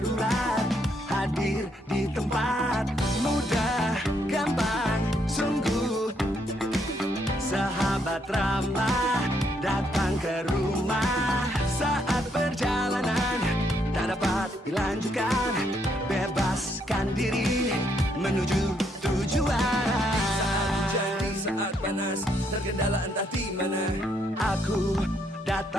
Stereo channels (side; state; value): both; normal; correlation 0.74